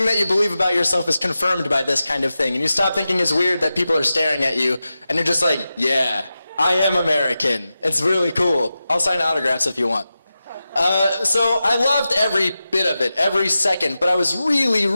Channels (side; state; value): both; inverted; correlation -0.92